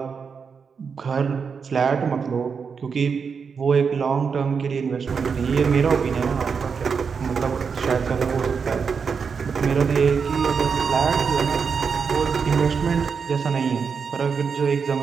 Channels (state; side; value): quieter; left; 5.9 dB